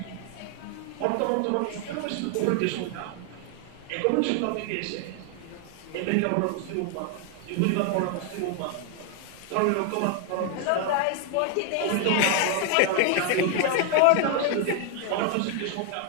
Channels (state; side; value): different; both; correlation 0.00